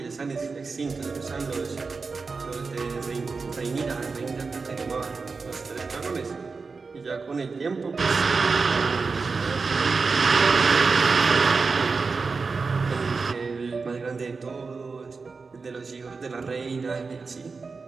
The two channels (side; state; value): left; quieter; 4.5 dB